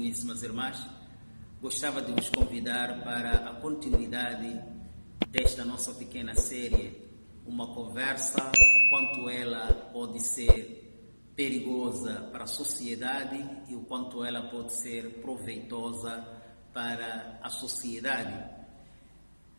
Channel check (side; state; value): both; inverted; correlation -1.00